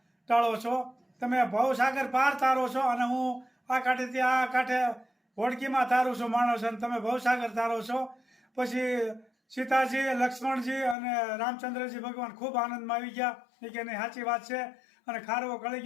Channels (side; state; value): right; drops out; at 11.0 s